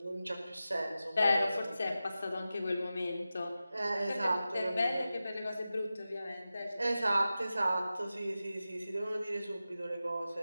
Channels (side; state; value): both; inverted; correlation -0.94